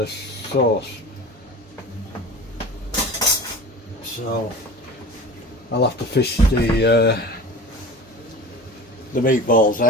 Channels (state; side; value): normal; both; correlation 0.36